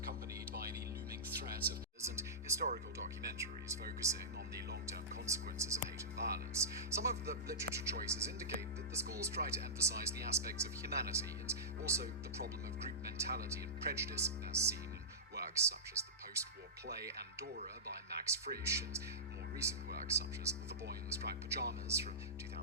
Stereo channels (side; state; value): both; normal; correlation -0.16